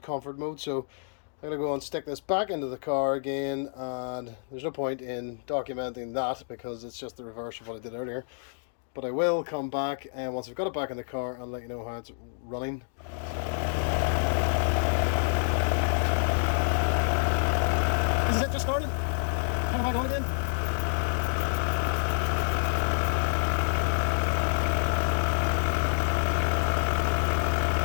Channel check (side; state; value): right; silent; digital silence